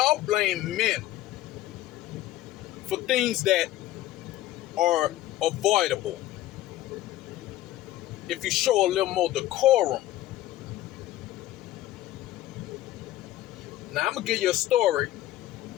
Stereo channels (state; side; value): quieter; right; 14.7 dB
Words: blame men for things that are avoidable. If you show a little more decorum. Now, I'm going to give you a story,